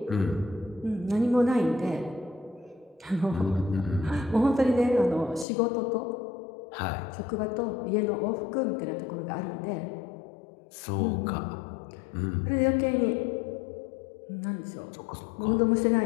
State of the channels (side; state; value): right; drops out; at 5.5 s